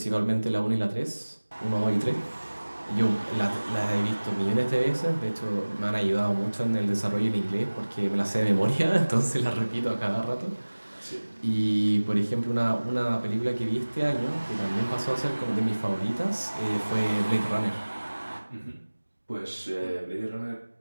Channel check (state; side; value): inverted; both; correlation -1.00